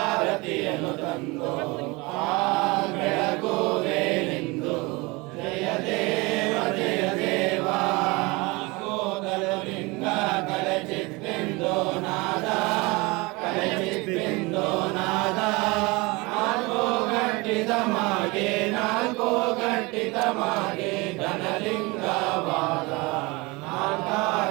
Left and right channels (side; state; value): left; quieter; 24.9 dB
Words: ತಂದು ಬೆಳಗುವೆ ನಿಂದು ಜಯ ದೇವ ಜಯ ದೇವ ಲಿಂಗ ಕಲಚಿತ್ತೆಂದು ನಾದ ಕಲಚಿತ್ತೆಂದು ನಾದ ನಾಲ್ಕು ಗಟ್ಟಿದ ಮಾಗೆ ನಾಲ್ಕು ಗಟ್ಟಿದ ಮಾಗೆ ಘನಲಿಂಗವಾದ